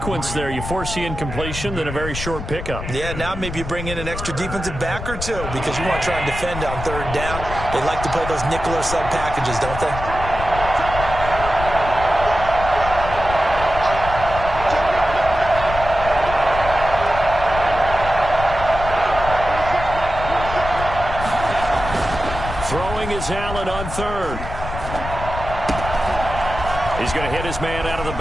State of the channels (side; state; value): left; noise; rumble, 8 dB below the sound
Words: there. You force the incompletion, then a very short pickup. Yeah, now maybe you bring in an extra defensive back or two because you want to try and defend on 3rd down. They like to play those nickel or sub packages, don't they? Throwing is Allen on 3rd. He's going to hit his man out of the